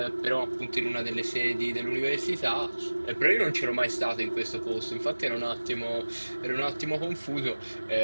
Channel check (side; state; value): both; inverted; correlation -1.00